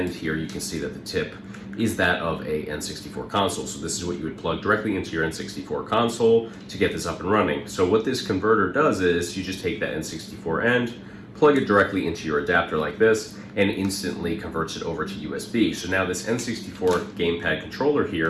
here you can see that the tip is that of a N64 console. So this is what you would plug directly into your N64 console to get this up and running. So what this converter does is you just take that N64 end, plug it directly into your adapter like this, and instantly converts it over to USB. So now this N64 gamepad controller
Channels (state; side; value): identical; both; correlation 1.00